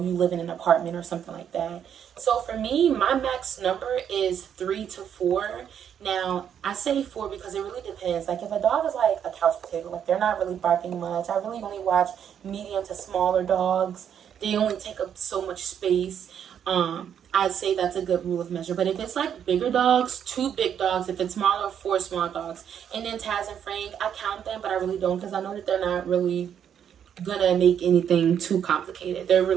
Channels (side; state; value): left; quieter; 8.7 dB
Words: you live in an apartment or something like that. So for me, my max number is 3 to 4. Now, I say 4 because it really depends. Like, if a dog is like a couch potato, like they're not really barking much. I really only watch medium to smaller dogs. They only take up so much space. I'd say that's a good rule of measure. But if it's like bigger dogs, 2 big dogs. If it's smaller, 4 small dogs. And then Taz and Frank, I count them, but I really don't, because I know that they're not really gonna make anything too complicated. They're